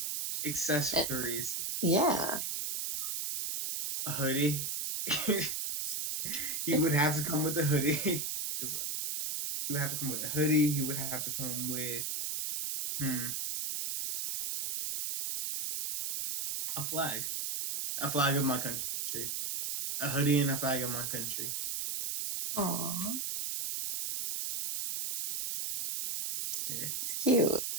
Accessories, Yeah. a hoodie. He would have to come with a hoodie because he would have to come with a hoodie. He would have to come with a flag of my country, a hoodie and a flag of my country. Aww. Yeah. It's cute.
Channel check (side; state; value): right; noise; hiss, 2 dB below the sound